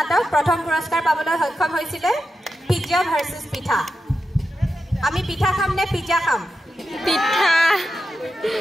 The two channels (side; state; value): both; normal; correlation 0.89